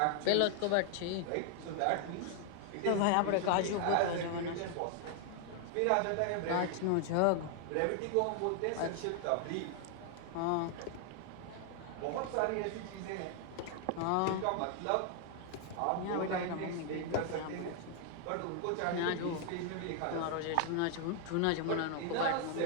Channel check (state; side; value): different; both; correlation 0.00